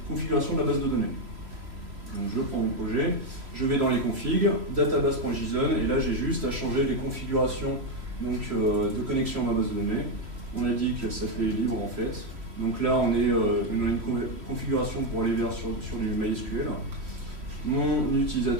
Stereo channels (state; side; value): late; left; 3.1 ms